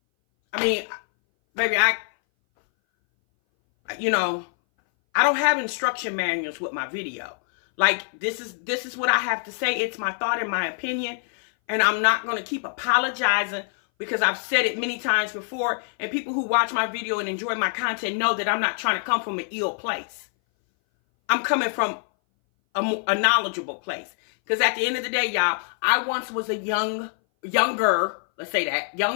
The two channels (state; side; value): silent; right; 59 dB below the other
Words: I mean, baby, I don't have instruction manuals with my video. Like, this is what I have to say. It's my thought and my opinion. And I'm not going to keep apologizing, because I've said it many times before. And people who watch my video and enjoy my content know that I'm not trying to come from an ill place. I'm coming from a knowledgeable place. Because at the end of the day, y'all, I once was a younger